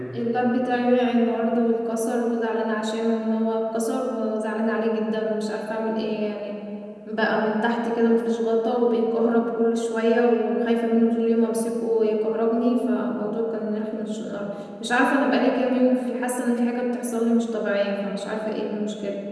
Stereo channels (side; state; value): both; identical; correlation 1.00